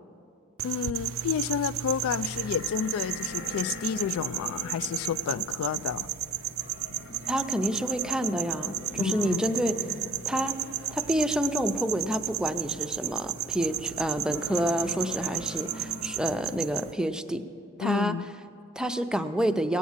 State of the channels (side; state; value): both; normal; correlation 0.51